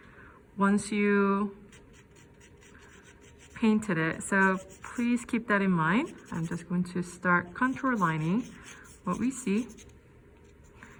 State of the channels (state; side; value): identical; both; correlation 1.00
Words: once you painted it. So please keep that in mind. I'm just going to start contour lining what we see.